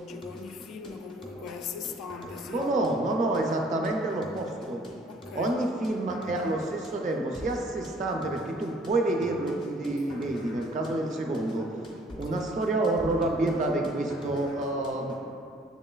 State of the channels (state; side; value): normal; both; correlation 0.58